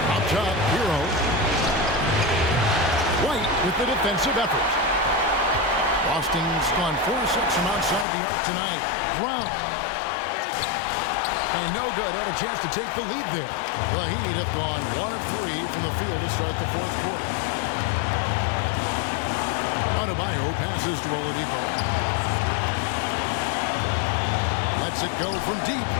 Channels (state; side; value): drops out; right; at 8.1 s